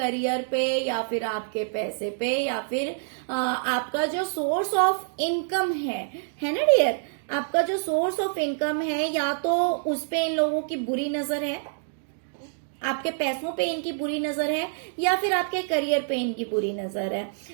पे, या फिर आपके पैसे पे, या फिर आपका जो सोर्स ऑफ इनकम है ना डियर, आपका जो सोर्स ऑफ इनकम है, या तो उस पे इन लोगों की बुरी नजर है, आपके पैसों पे इनकी बुरी नजर है, या फिर आपके करियर पे इनकी बुरी नजर है।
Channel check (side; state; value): left; silent; digital silence